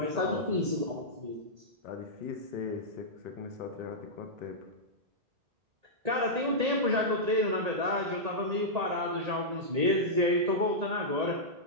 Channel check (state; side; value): late; left; 1.8 ms